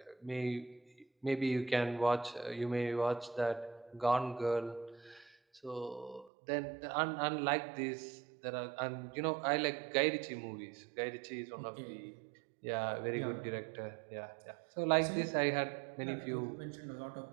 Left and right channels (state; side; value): drops out; left; at 6.3 s